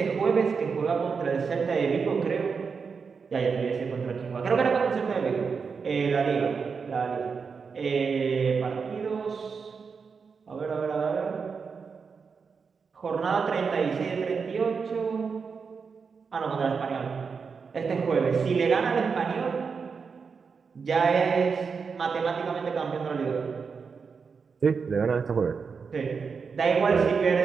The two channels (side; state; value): left; quieter; 5.5 dB